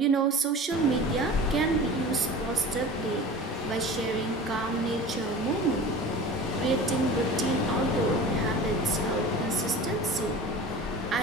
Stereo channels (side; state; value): both; normal; correlation 0.37